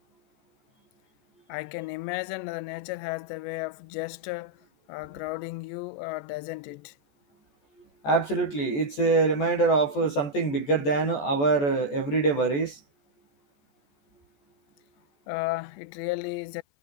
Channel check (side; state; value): right; late; 14 ms